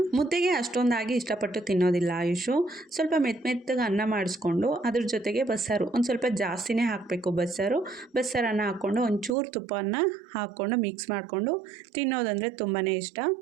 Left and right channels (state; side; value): drops out; left; at 9.3 s